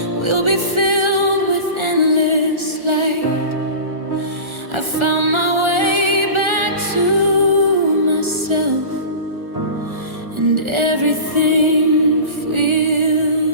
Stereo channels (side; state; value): left; late; 1.4 ms